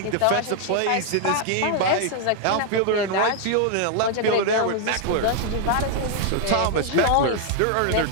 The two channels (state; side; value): different; both; correlation 0.00